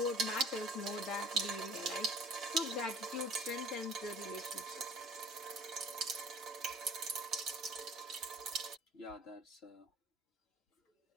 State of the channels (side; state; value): both; normal; correlation 0.48